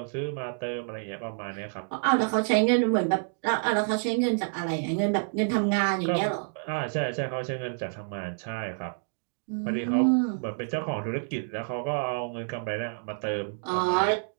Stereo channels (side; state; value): left; silent; digital silence